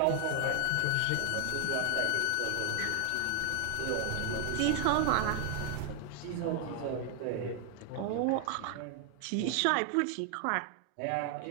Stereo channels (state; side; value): different; both; correlation 0.00